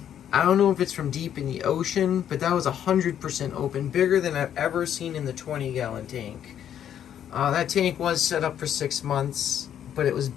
I don't know if it's from deep in the ocean, but that was 100% open, bigger than I've ever seen in the 20-gallon tank. That tank was set up for 6 months, but it was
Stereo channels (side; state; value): right; quieter; 9.8 dB